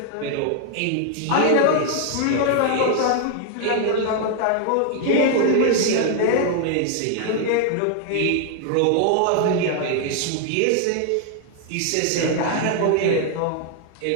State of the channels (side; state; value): both; different; correlation 0.00